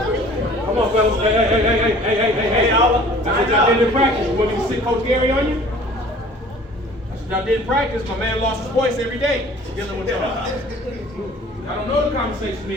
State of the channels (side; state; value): both; normal; correlation 0.49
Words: Come on, fellas. Hey, y'all. That's what y'all did in practice. You want me to sit Coach Gary on you? That's what y'all did in practice. My man lost his voice every day dealing with y'all. I don't know the conversation me